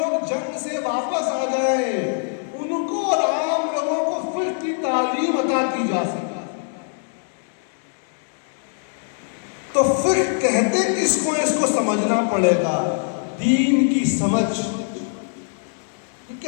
جنگ سے واپس آ جائیں ان کو اور عام لوگوں کو فقہ کی تعلیم عطا کی جا سکے. تو فقہ کہتے کس کو؟ اس کو سمجھنا پڑے گا. دین کی سمجھ. یہ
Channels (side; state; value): right; silent; 64 dB below the other